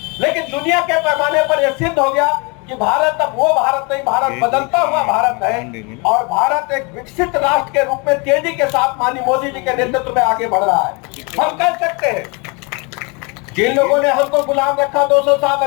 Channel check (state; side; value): quieter; right; 30.5 dB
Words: लेकिन दुनिया के पैमाने पर यह सिद्ध हो गया कि भारत अब वो भारत नहीं, भारत बदलता हुआ भारत है, और भारत एक विकसित राष्ट्र के रूप में तेजी के साथ माननीय मोदी जी के नेतृत्व में आगे बढ़ रहा है। हम कह सकते हैं जिन लोगों ने हमको गुलाम रखा 200